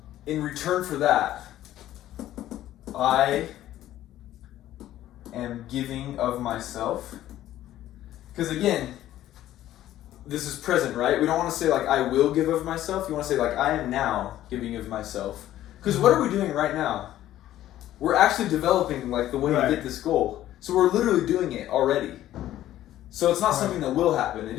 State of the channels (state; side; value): quieter; right; 13.3 dB